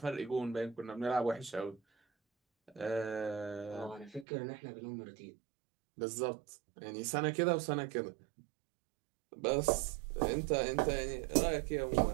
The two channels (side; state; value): left; drops out; at 4.2 s